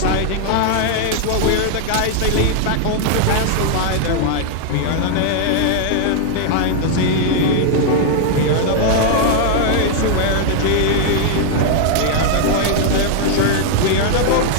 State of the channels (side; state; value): both; different; correlation 0.00